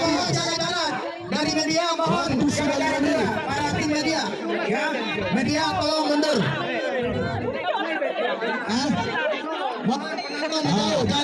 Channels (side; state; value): both; identical; correlation 1.00